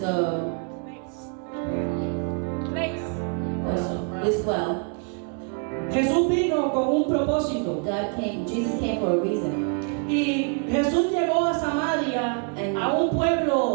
also this well, Jesús vino con un propósito. Jesus came for a reason. Y Jesús llegó a Samaria, a un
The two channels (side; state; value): left; quieter; 37.8 dB